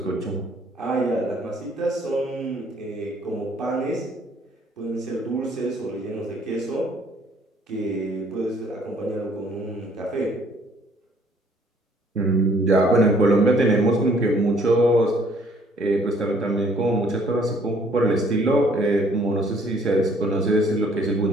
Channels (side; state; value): both; normal; correlation 0.61